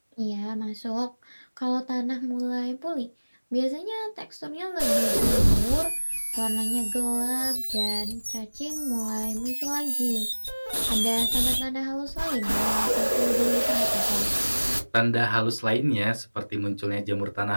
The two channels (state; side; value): inverted; both; correlation -1.00